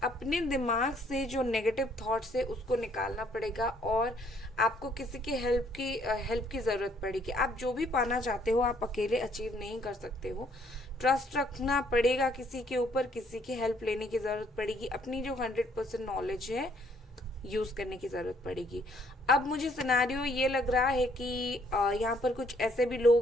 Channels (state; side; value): normal; both; correlation 0.65